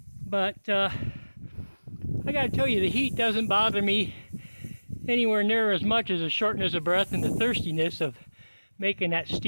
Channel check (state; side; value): inverted; both; correlation -1.00